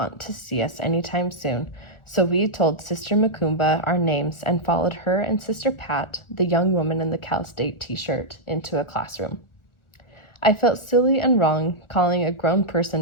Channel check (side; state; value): right; late; 1.3 ms